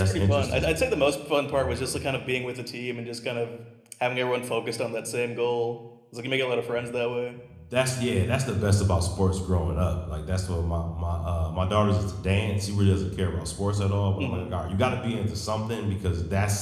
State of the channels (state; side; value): identical; both; correlation 1.00